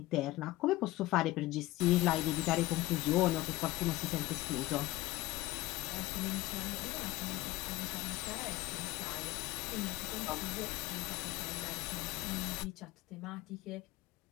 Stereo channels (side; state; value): right; quieter; 18.6 dB